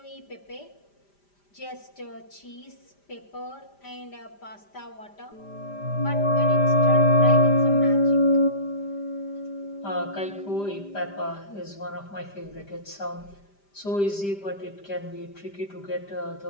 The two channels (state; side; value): late; right; 5.0 ms